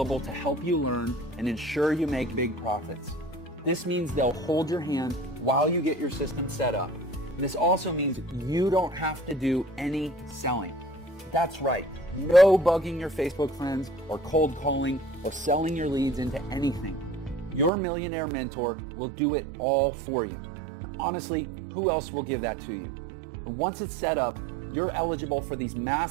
to help you learn and ensure you make big profits. This means they'll hold your hand while you get your system set up. This also means you don't have to do any selling. That's right. No bugging your Facebook friends or cold calling or selling your leads into anything. Your millionaire mentor will do it all for you. Honestly, who else will give that to you? And once it's set up, you're eligible for these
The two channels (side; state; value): left; drops out; at 17.7 s